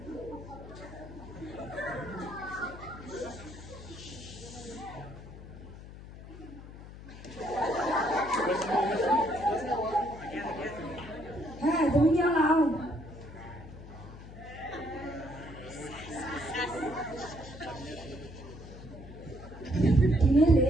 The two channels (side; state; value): left; noise; hum, 14 dB below the sound